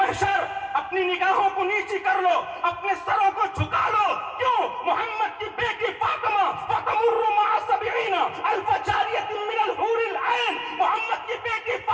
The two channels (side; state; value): both; identical; correlation 1.00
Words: اپنی نگاہوں کو نیچی کر لو، اپنے سروں کو جھکا لو۔ کیوں؟ محمد کی بیٹی فاطمہ فتمر مع 70 الف جاریۃ من الحور العین، محمد کی بیٹی